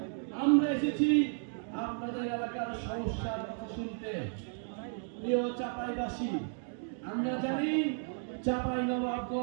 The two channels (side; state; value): left; silent; 55 dB below the other